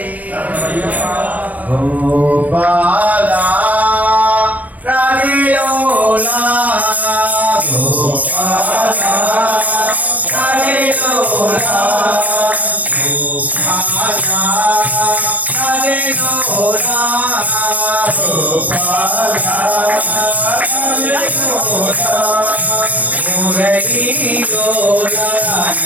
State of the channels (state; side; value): late; left; 0.073 ms